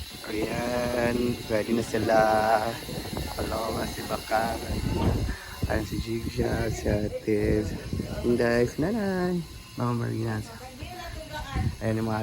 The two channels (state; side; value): identical; both; correlation 1.00